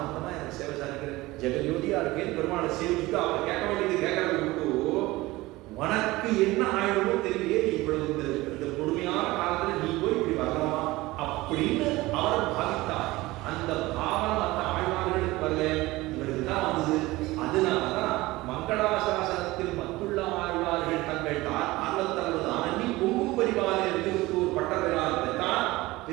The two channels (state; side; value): quieter; left; 19.6 dB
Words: எனக்கு சேவை சாதிக்கிற ஜெகஜோதியா இருக்கேன். பெருமாளை சேவிச்சுட்டு அவர் கேட்க வேண்டியது கேட்கறது விட்டு உனக்கு என்ன ஆயிடுமோ தெரியலையே, இவ்வளவு இந்த கொடுமையான காலத்துல நீ போய் இப்படி வரலாமா அப்படின்னு அவர் பாவித்தார். அந்த பாவம் அந்த ஆழ்வார்களுக்கு வரல, இவருக்கு தான் வந்தது. அதனாலதான் மங்களாசாசனத்தில் மத்துள்ள ஆழ்வார்கள் தங்கள் ஆர்வத்தளவு ஆனி பொங்கும் பரிவாரில் இருந்து ஒரு பட்டப்பெயராக தான்